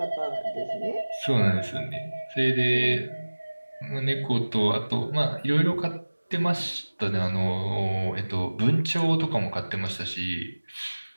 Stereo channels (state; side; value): inverted; both; correlation -1.00